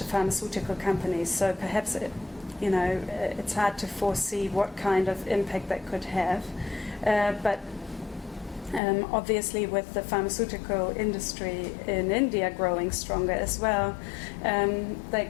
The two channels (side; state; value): right; drops out; at 8.8 s